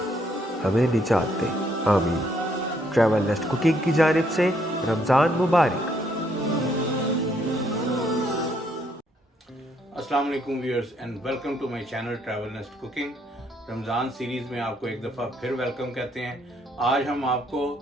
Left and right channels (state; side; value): normal; both; correlation 0.70